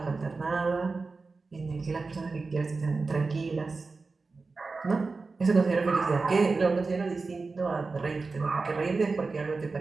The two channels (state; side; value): quieter; left; 4.0 dB